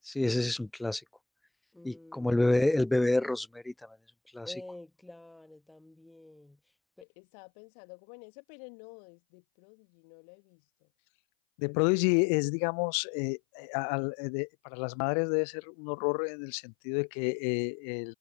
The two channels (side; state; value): right; drops out; at 7.1 s